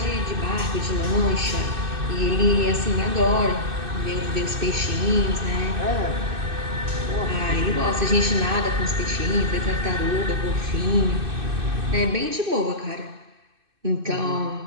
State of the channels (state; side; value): late; left; 2.6 ms